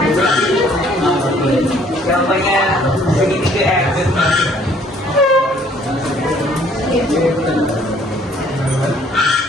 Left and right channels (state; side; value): normal; both; correlation 0.60